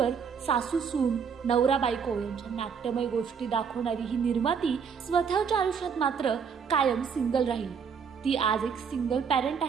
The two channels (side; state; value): left; quieter; 6.5 dB